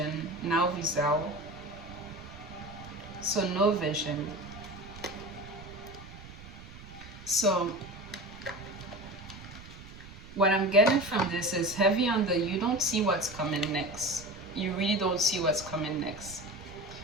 Now visão. So no vision. So what I'm getting from this is heavy on the, you don't see what's coming next. You really don't see what's coming next.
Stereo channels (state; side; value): noise; right; rumble, 16 dB below the sound